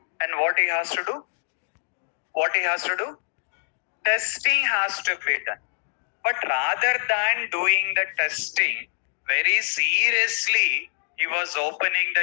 and what he has to do? What he has to do? Testing has to be done. But rather than doing the testing very seriously, he was opening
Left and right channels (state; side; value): silent; right; digital silence